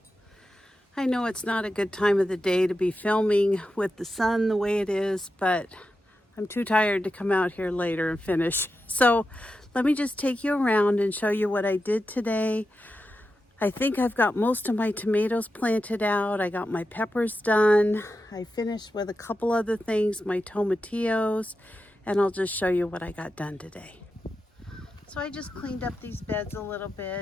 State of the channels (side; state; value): both; normal; correlation 0.90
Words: I know it's not a good time of the day to be filming with the sun the way it is, but I'm too tired to come out here later and finish. So let me just take you around and show you what I did today. I think I've got most of my tomatoes planted out. I got my peppers done. I finished with a couple other things, my tomatillos, and I'll just show you what I got done today. So I just cleaned up these beds a little